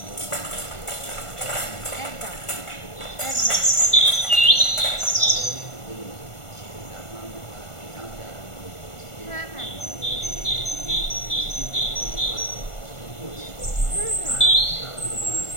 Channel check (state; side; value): late; right; 1.4 ms